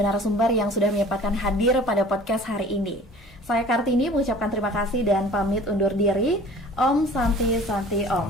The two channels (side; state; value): both; normal; correlation 0.46